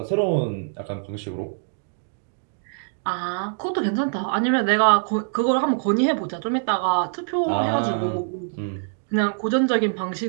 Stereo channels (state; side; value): silent; left; digital silence